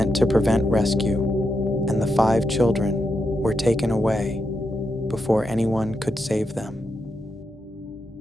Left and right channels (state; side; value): normal; both; correlation 0.85